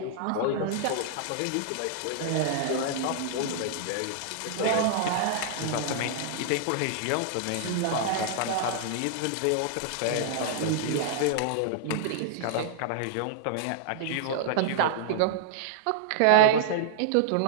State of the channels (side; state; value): both; different; correlation -0.01